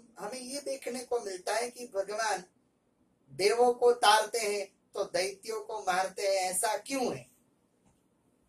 ये देखने को मिलता है कि भगवान देवों को तारते हैं तो दैत्यों को मारते हैं, ऐसा क्यों है?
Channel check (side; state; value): both; identical; correlation 1.00